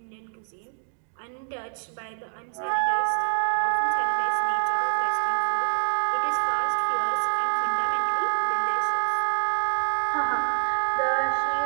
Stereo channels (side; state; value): left; silent; digital silence